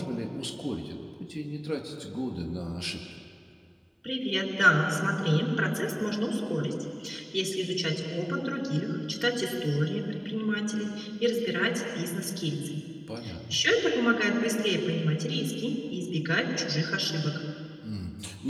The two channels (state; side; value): identical; both; correlation 1.00